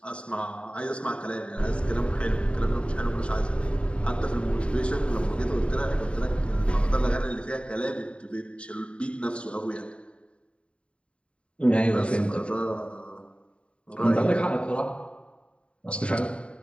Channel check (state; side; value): late; right; 0.059 ms